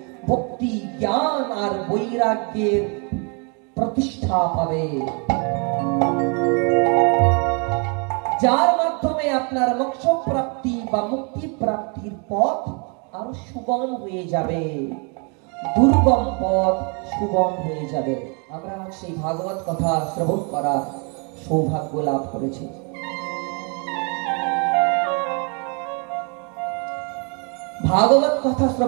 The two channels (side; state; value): left; quieter; 35.5 dB